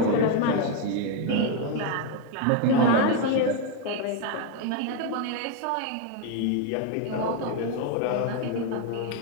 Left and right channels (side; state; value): both; different; correlation 0.02